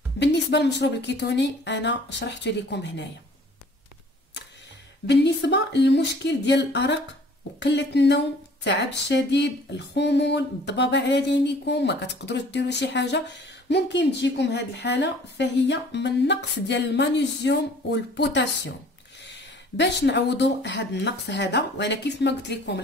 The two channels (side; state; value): both; normal; correlation 0.53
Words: بالنسبه للمشروب الكيتوني انا شرحته لكم هنايا. بالنسبه للمشكل ديال الارق وقله النوم، التعب الشديد، الخمول، الضبابه على عينيكم، ما كتقدروش ديروا شي حاجه، ممكن تجيكم هذه الحاله، فهي من نقص ديال المغنيسيوم والبوتاسيوم. باش نعوضوا هذا النقص هذا، وانا كيف ما قلت لكم